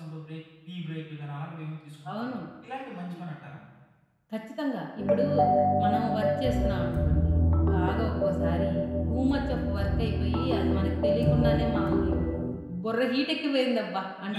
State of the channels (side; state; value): both; identical; correlation 1.00